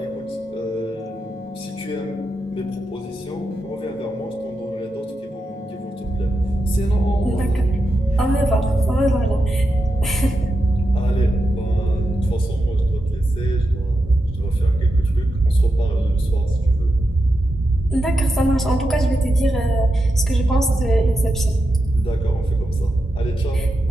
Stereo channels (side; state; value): both; normal; correlation 0.88